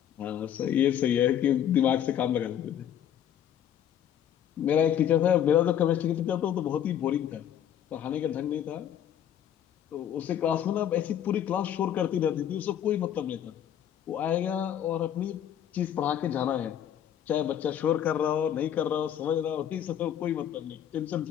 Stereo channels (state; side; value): quieter; right; 10.0 dB